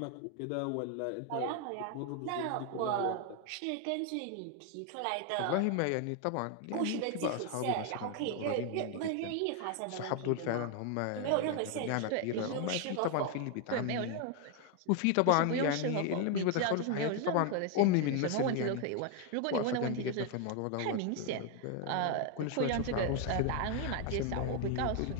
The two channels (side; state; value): both; different; correlation 0.00